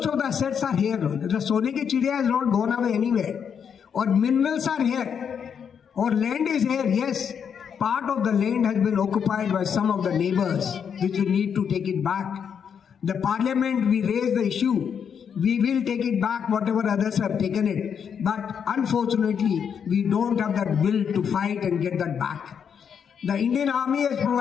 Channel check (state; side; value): quieter; right; 7.4 dB